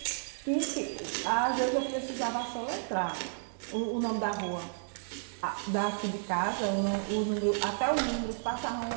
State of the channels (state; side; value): silent; left; digital silence